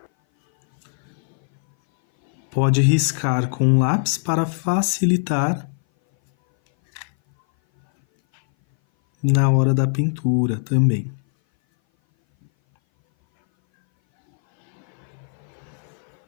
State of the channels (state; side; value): silent; right; 59 dB below the other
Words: riscar com um lápis para facilitar na hora da pintura também.